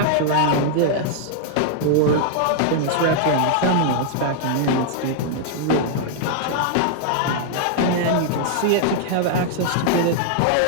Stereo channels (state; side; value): different; both; correlation -0.01